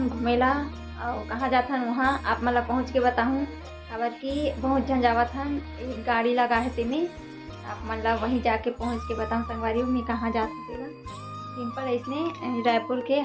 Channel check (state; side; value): identical; both; correlation 1.00